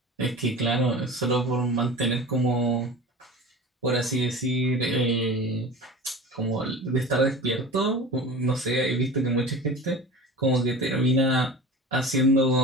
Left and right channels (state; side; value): normal; both; correlation 0.35